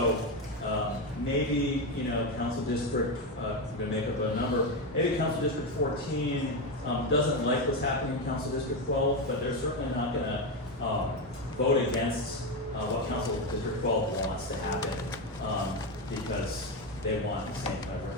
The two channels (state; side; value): normal; both; correlation 0.11